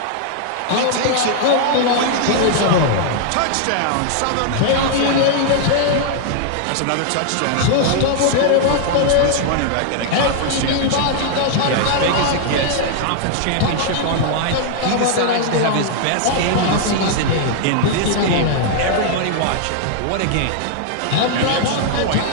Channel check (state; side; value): different; both; correlation 0.00